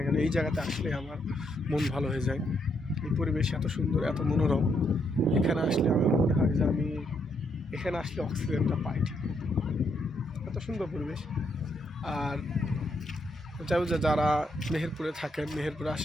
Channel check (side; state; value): both; normal; correlation 0.76